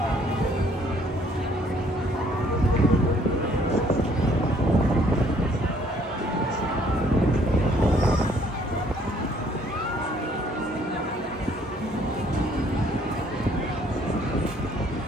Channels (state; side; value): normal; both; correlation 0.63